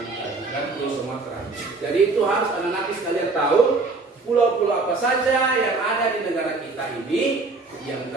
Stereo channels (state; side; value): quieter; left; 3.7 dB